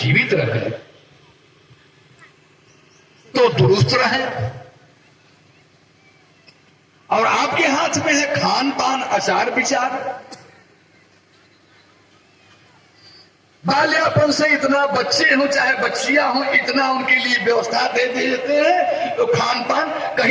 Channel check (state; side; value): identical; both; correlation 1.00